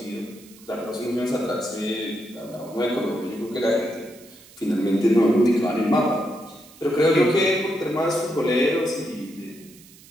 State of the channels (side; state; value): right; noise; hiss, 23 dB below the sound